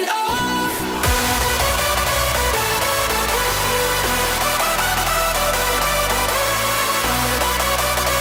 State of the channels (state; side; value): identical; both; correlation 1.00